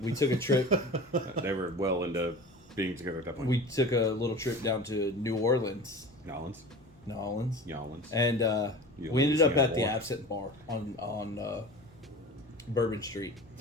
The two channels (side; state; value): both; normal; correlation 0.36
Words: took a trip. They were well into being together at that point. We took a little trip down to New Orleans, Nolans. and we ended up at the Absinthe Bar on Bourbon Street.